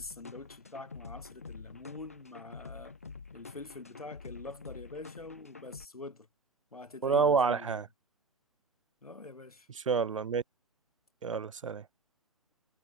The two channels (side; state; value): left; quieter; 4.2 dB